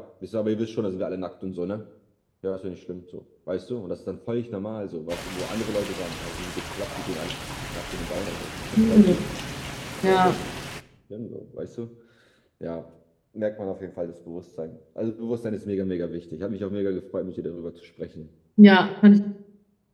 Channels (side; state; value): both; identical; correlation 1.00